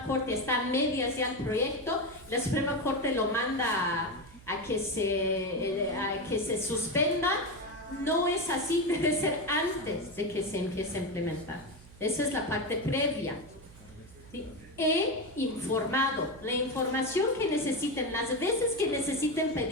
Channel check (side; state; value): right; noise; hum, 21 dB below the sound